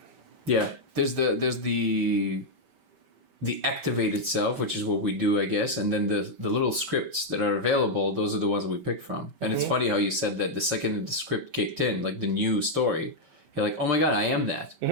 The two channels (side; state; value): left; late; 5.2 ms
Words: Yeah. There's the activated self, which is what we do, I guess. And then the little scripts that are available, those are the ones that we pick from. And it's funny how you said that the second the script kicked in, like the new story, you're like, oh my God, I am that.